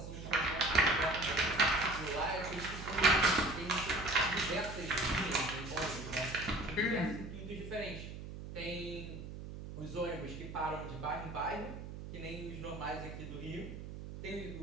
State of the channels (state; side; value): noise; right; hum, 10 dB below the sound